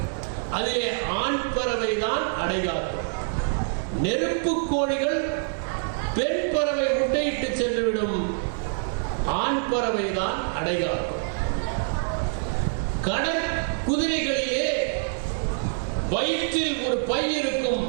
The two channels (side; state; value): left; silent; 61 dB below the other